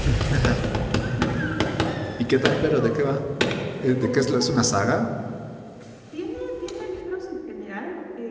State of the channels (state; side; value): identical; both; correlation 1.00